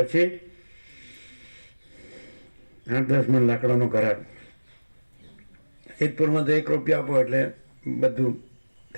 8-10 મણ લાકડાનો ઘરાક. સિદ્ધપુરમાં તો 1 રૂપિયા આપો એટલે બધું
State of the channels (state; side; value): inverted; both; correlation -1.00